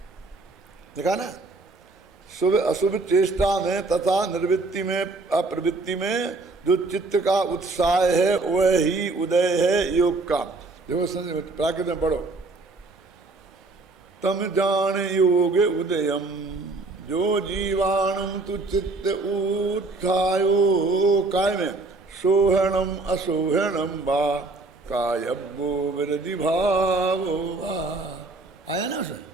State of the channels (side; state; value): left; quieter; 3.4 dB